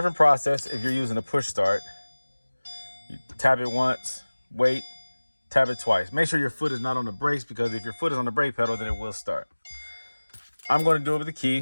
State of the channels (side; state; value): both; inverted; correlation -1.00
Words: process if you're using a push start. You tap it once, wait, tap it twice. Make sure your foot is not on the brakes, because if your foot is on the brake pedal, then it will start. I'm going to do it with the